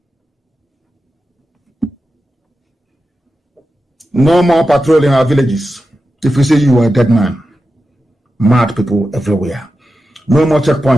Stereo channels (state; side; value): normal; both; correlation 0.91